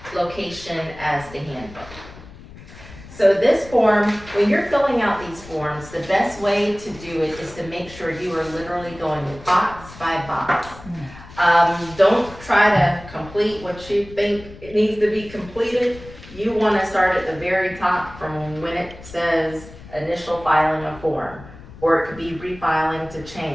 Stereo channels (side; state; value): left; noise; rumble, 18 dB below the sound